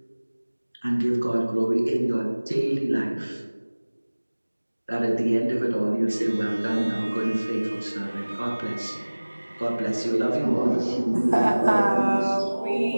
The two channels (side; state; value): both; inverted; correlation -1.00